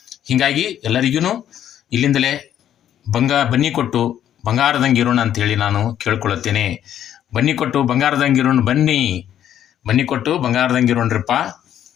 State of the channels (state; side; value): quieter; right; 10.6 dB